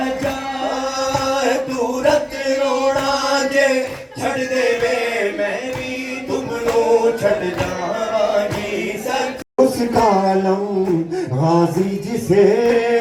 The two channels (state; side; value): identical; both; correlation 1.00